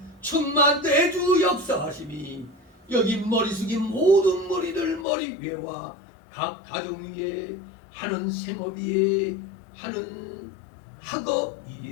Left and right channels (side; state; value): right; drops out; at 5.1 s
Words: 충만 내주 역사하심이 여기 머리 숙인 모든 머리들 머리 위에와 각 가정 위에 하는 생업 위에 하는 학업